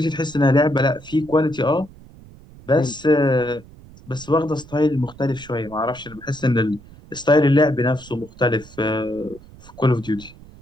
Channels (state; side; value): noise; right; rumble, 21 dB below the sound